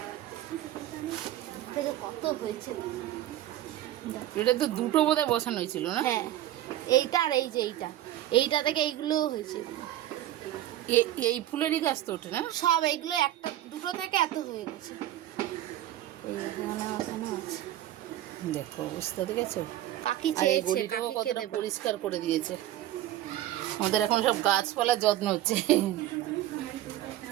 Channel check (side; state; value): left; quieter; 13.5 dB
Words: কত হয়েছে। এটা তো দুটো বোধহয় বসানো হয়েছিল না? হ্যাঁ, এইটা আর এই যে এইটা থেকে এইগুলোও হয়েছে। এই ফুলেরই গাছ তো ওঠে না সব, এইগুলো একটা দুটো থেকে এত হয়ে গেছে। এই ওখানে আছে, দেখো অবস্থা দেখেছো। কাকি চেয়েছে, কাকিকে দেব। পরিষ্কার করে দিয়েছে। আমাদের এখন সব গাছপালার যত্ন হচ্ছে।